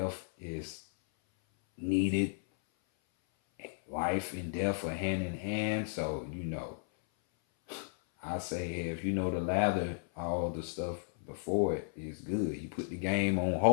is needed. Life and death are hand in hand. So I say if you know the lather, all the stuff before it is good. You put the game on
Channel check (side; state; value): right; silent; 55 dB below the other